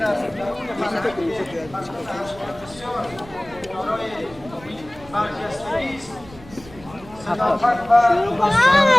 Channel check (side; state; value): right; noise; rumble, 20 dB below the sound